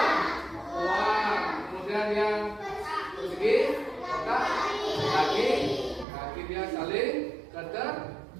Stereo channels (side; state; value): left; drops out; at 6.1 s